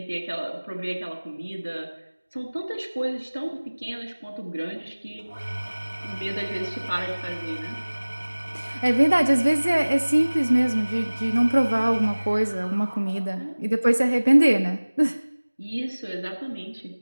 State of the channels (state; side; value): inverted; both; correlation -1.00